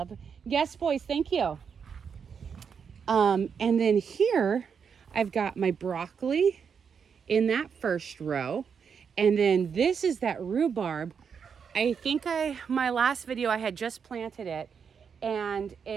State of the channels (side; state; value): left; quieter; 6.6 dB